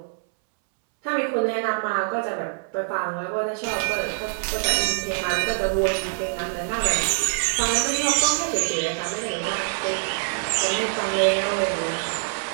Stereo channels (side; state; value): left; silent; 62 dB below the other